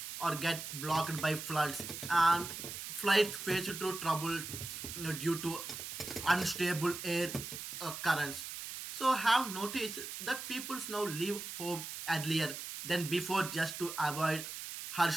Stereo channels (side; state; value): right; noise; hiss, 8 dB below the sound